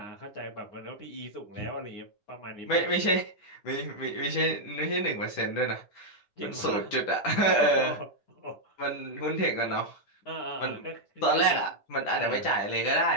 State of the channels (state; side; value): late; right; 10 ms